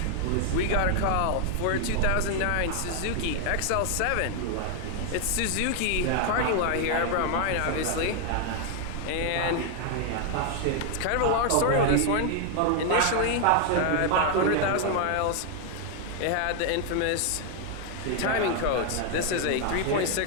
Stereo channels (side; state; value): both; different; correlation 0.00